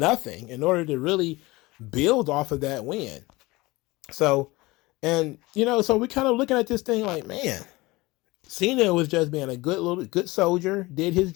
in order to really build off of that win. So, and so we're kind of looking at this thing like, man, Cena was just being a good soldier, did his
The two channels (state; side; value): quieter; right; 21.6 dB